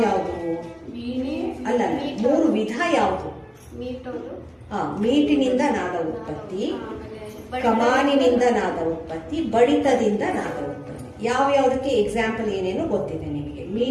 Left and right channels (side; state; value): both; identical; correlation 1.00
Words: ಅಲ್ಲ, 3 ವಿಧ ಯಾವುದು? ಮೀಟಿನಿಂದ ನಾದ ಉತ್ಪತ್ತಿ, ಕಮಾನಿನಿಂದ ನಾದ ಉತ್ಪತ್ತಿ, ಬಡಿತದಿಂದ ನಾದ ಉತ್ಪತ್ತಿ. ಯಾವ್ಯಾವುದಕ್ಕೆ ಎಕ್ಸಾಂಪಲ್ ಏನೇನು ಗೊತ್ತಿದೆ ನಿಮಗೆ.